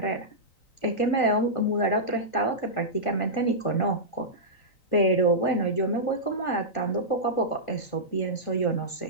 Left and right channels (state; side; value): late; right; 3.9 ms